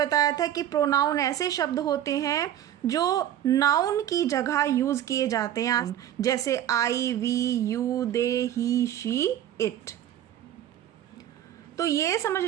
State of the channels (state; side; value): quieter; left; 11.3 dB